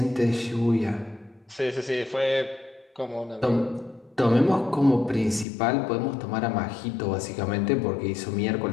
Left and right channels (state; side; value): drops out; right; at 5.5 s